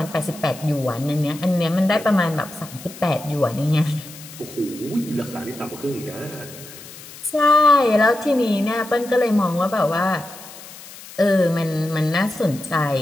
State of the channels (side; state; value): left; noise; hiss, 17 dB below the sound